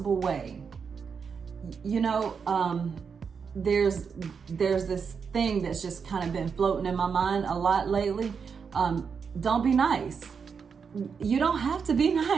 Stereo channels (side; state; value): left; quieter; 6.1 dB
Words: way. You know, there's this thing that's just kind of been floating in my mind a lot lately. Don't be nice. You don't have to be